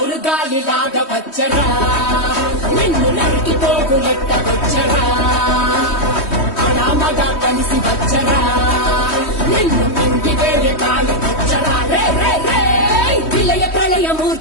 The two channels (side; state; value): right; late; 3.1 ms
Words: గాలిలాగా వచ్చరా, నిన్ను నరికి పోగులెట్ట వచ్చరా, అడామగా కలిసి వచ్చరా, నిన్ను మింగి వేరే కాలి వచ్చరా. రే రే రే విలయ